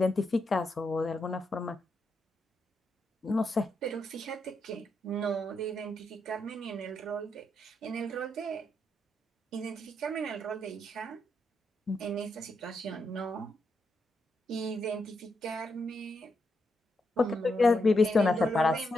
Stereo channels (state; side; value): normal; both; correlation 0.82